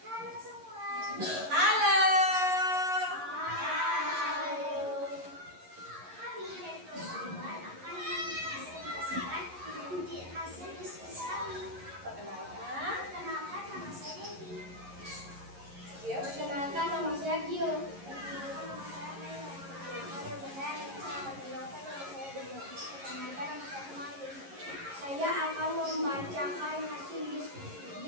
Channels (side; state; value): left; late; 11 ms